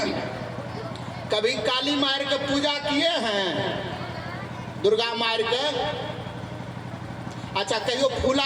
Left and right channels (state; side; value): identical; both; correlation 1.00